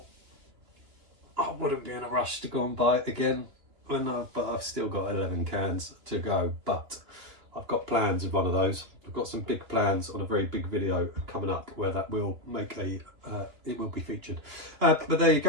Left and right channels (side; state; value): left; late; 2.9 ms